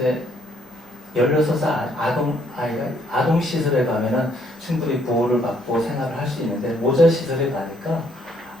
16살 아이가 아동 시설에 가면은 충분히 보호를 받고 생활을 할 수 있는데 모자 시설에 가니까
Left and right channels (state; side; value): normal; both; correlation 0.68